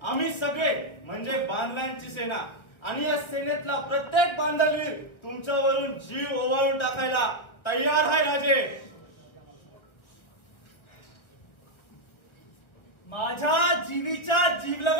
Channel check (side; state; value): right; late; 1.6 ms